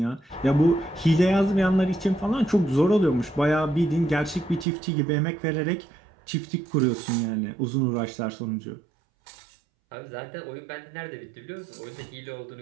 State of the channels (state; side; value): drops out; left; at 4.7 s